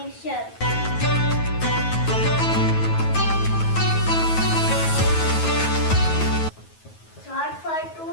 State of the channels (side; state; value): right; late; 9.3 ms